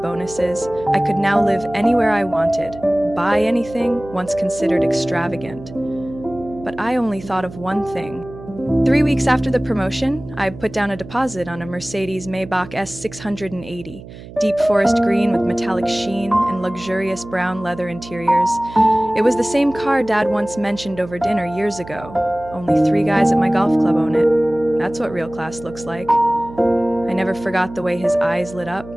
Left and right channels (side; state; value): right; noise; hum, 16 dB below the sound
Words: I could now live anywhere I wanted, buy anything once considered extravagant. But I only thought of one thing. 3 weeks after the promotion, I put down a deposit on a Mercedes Maybach S680, deep forest green with metallic sheen and luxurious brown leather interiors. It was the same car Dad once mentioned over dinner years ago. Only 3 guys at my golf club own it. That's what real class looks like. I never forgot the way his eyes lit up.